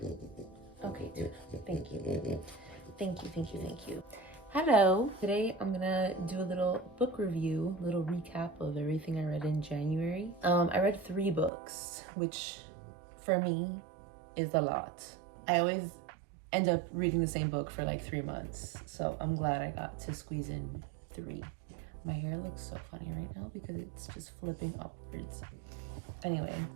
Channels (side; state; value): left; drops out; at 11.5 s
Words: thank you. Thank you, thank you, thank you. Hello. Today I'm gonna do a little book review, little recap of everything I read in January. I read 3 books, which for me is a lot. I always end up reading the same book for like 3 months, so I'm glad I got to squeeze in 3. My hair looks so funny right now because it's just flipping upwards. Anyway,